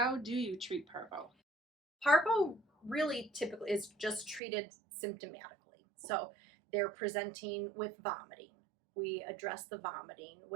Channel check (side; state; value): left; drops out; at 4.4 s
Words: do you treat parvo? Parvo really typically is just treated symptomatically. So they're presenting with vomiting. We address the vomiting